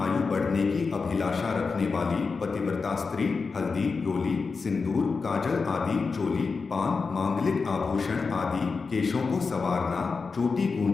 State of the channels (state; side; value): quieter; right; 4.7 dB